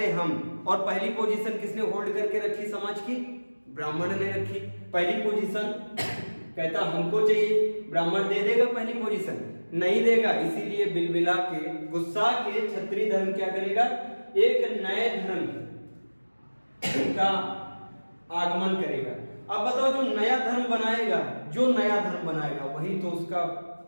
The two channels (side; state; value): both; inverted; correlation -1.00